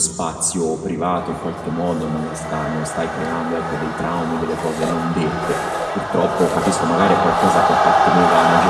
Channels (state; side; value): identical; both; correlation 1.00